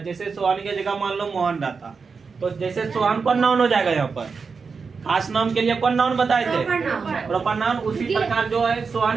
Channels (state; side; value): quieter; left; 5.1 dB